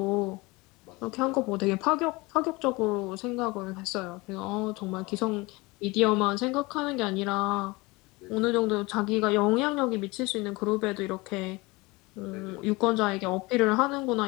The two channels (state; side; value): quieter; right; 23.7 dB